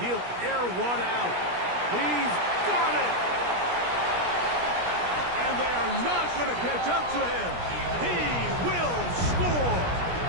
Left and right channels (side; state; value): left; late; 17 ms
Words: air one out. He's got it. And they are not going to catch up to him. He will score.